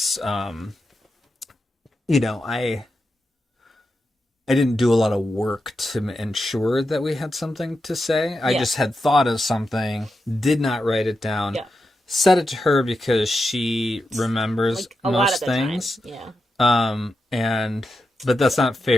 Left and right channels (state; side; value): normal; both; correlation 0.88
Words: I didn't do a lot of work to ensure that we had something to say. I Yeah. just had thought of something, did not write it down, Yeah. said it to her because she remembers Like a lot of most the things. time. Yeah. But that's not